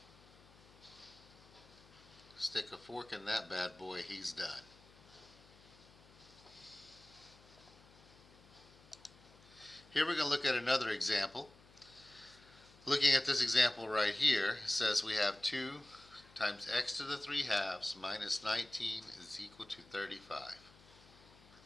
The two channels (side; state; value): left; noise; hum, 24 dB below the sound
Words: Stick a fork in that bad boy, he's done. Here we're going to look at another example. Looking at this example right here, it says we have 2 times x to the 3/2 minus 19 is equal to 35.